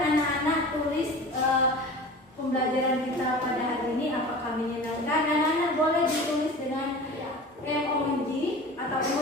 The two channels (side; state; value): both; normal; correlation 0.37